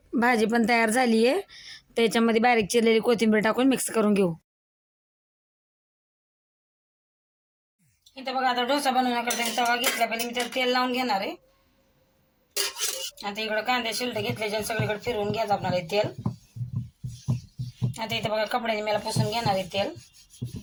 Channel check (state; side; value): identical; both; correlation 1.00